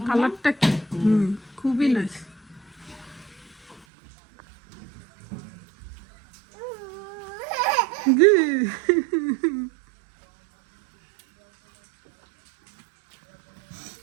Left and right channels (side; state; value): left; drops out; at 3.9 s